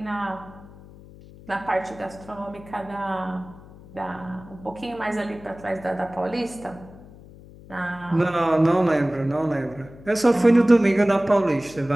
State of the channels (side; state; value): left; noise; hum, 20 dB below the sound